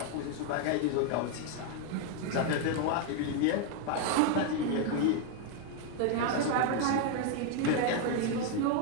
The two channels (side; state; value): both; different; correlation 0.01